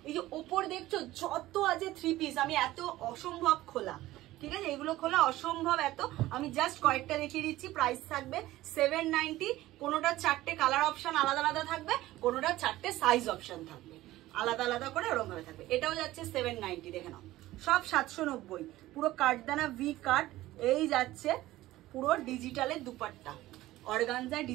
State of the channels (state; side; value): quieter; left; 16.4 dB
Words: এই যে ওপর দেখছো যত আছে 3 পিস, আমি এত অসম্ভব খোলা, ঠিক আছে, এগুলো খোলা অসম্ভব এত। আমি জাস্ট কয়েকটা দেখিয়ে দিচ্ছি। প্রাইস থাকবে 790। কোনোটা 4টে কালার অপশন আলাদা আলাদা থাকবে, কোনোটা 4টে সাইজ অপশন থাকবে আলাদা আলাদা করে, ওরকম ভাবে থাকবে। এটাও যাচ্ছে 790, দেখে নাও সব 790। পুরো কাটদানা ভি কাট। এই যাচ্ছে পুরো ডিজিটালের দুপাট্টা, অর্গানজা